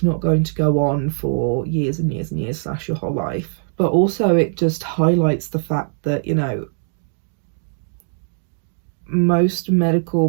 not going to go on for years and years and years / your whole life. But also it just highlights the fact that, you know, most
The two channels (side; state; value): left; silent; digital silence